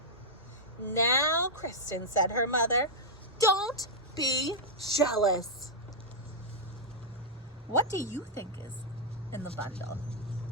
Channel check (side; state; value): both; normal; correlation -0.06